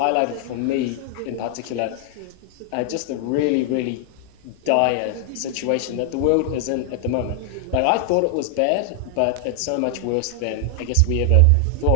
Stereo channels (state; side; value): different; both; correlation 0.00